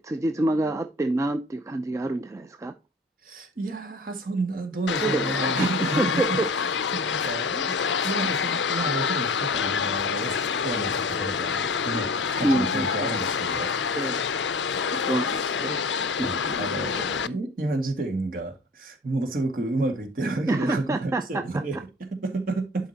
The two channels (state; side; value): normal; both; correlation 0.43